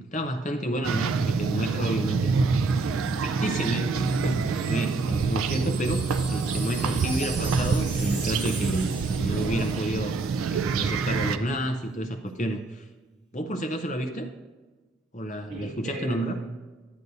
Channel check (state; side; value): quieter; left; 3.1 dB